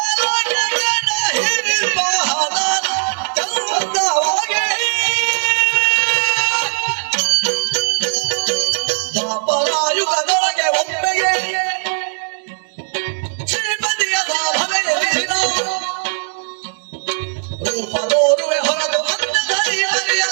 ದಾಪರಾಯುಗದೊಳಗೆ ಒಮ್ಮೆಗೆ ಶ್ರೀಮತಿಯ ಸಾಧನೆಯಲ್ಲಿನ ರೂಪದೋರುವೆ ಹೊರತು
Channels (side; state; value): left; silent; digital silence